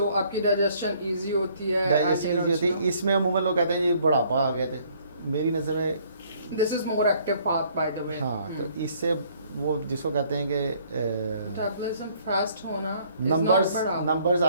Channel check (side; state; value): both; inverted; correlation -0.62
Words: आपकी डाइजेशन इजी होती है, डाइजेशन ईजी होती है। इसमें अमूमन लोग कहते हैं ये बुढ़ापा आ गए थे, मेरी नज़र में this is more active path by the way. हाँ, तो इससे वो जिसको कहते हैं कि मेटाबॉलिज्म फास्ट होना numbers